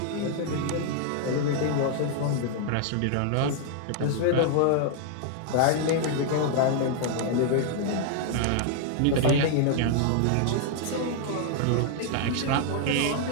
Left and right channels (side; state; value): both; different; correlation 0.00